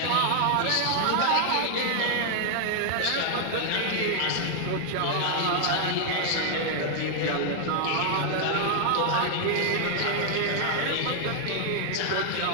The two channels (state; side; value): different; both; correlation 0.00